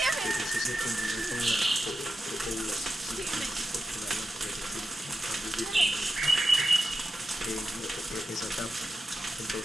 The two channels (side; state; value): both; normal; correlation 0.91